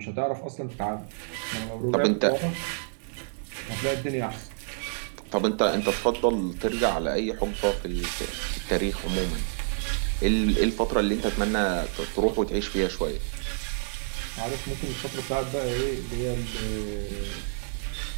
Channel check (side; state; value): left; silent; digital silence